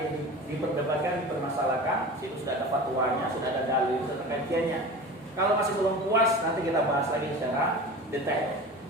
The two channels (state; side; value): normal; both; correlation 0.34